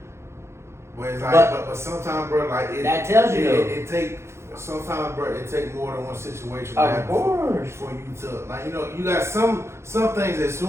but it's like, But- but sometimes, bro, like, That tells you, though. it take, sometimes, bro, it take more than one situation to Of happen course. for you to, like, you know, you got some things that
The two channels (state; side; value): late; left; 0.13 ms